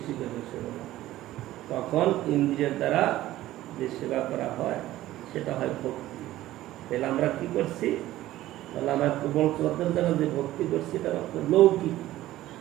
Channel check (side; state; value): left; quieter; 15.1 dB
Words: সেবা, তখন ইন্দ্রিয়ের দ্বারা যে সেবা করা হয় সেটা হয় ভক্তি। তাহলে আমরা কি করছি? তাহলে আমরা কোমল শ্রদ্ধার দ্বারা যে ভক্তি করছি এটা লৌকিক,